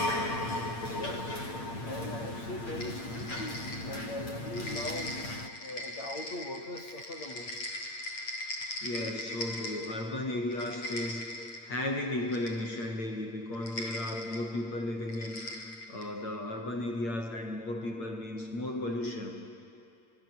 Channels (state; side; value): late; right; 8.7 ms